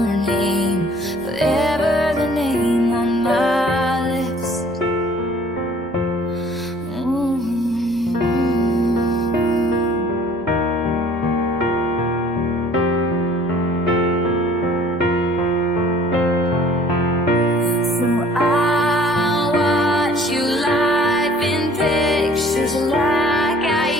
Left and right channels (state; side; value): noise; right; rumble, 23 dB below the sound